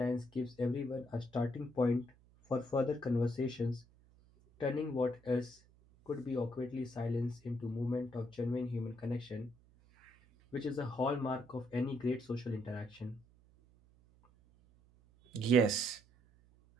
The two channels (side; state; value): right; noise; hum, 28 dB below the sound